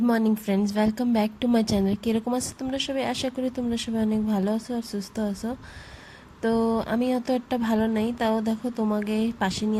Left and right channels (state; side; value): identical; both; correlation 1.00